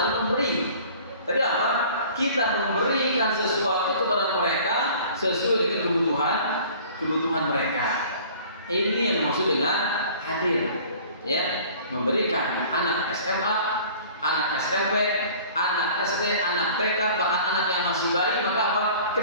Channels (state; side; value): inverted; both; correlation -0.48